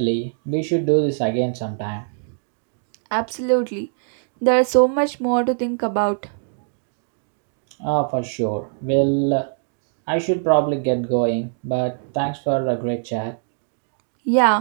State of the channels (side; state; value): left; silent; digital silence